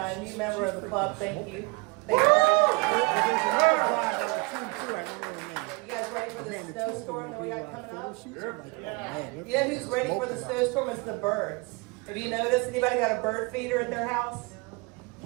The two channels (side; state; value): left; quieter; 28.0 dB